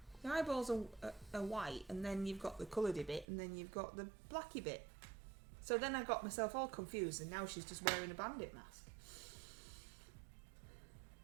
The eyeballs are white, and then you've got the coloured bit, and then you've got the blacky bit. So then I got myself all confused, and now she's just wearing a bandit mask.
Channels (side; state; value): left; drops out; at 3.2 s